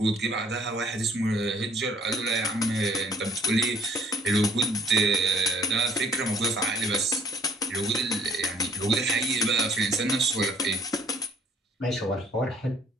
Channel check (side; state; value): both; normal; correlation 0.60